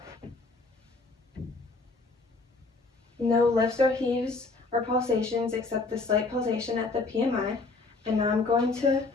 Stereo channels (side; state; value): right; quieter; 3.7 dB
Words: No lifts or heaves or pulsations except the slight pulsation at the PMI. And now I'm going to